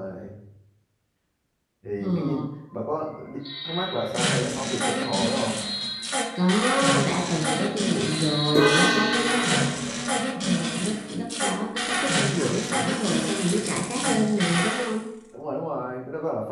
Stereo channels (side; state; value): both; identical; correlation 1.00